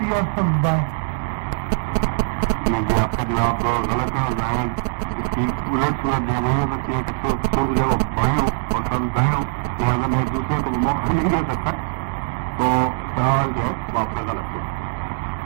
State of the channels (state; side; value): silent; left; digital silence